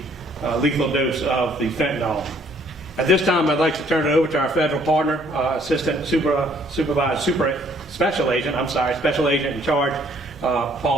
lethal dose of the fentanyl. At this time, I'd like to turn it over to our federal partner, Special Agent in charge,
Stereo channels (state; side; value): normal; both; correlation 0.63